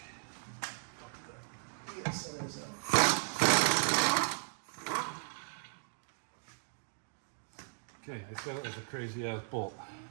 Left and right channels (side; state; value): left; silent; digital silence